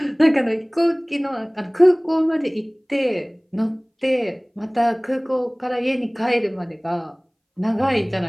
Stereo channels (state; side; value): identical; both; correlation 1.00